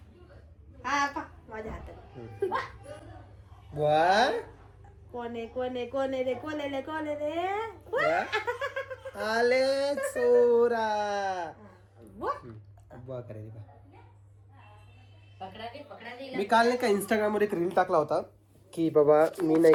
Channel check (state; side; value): identical; both; correlation 1.00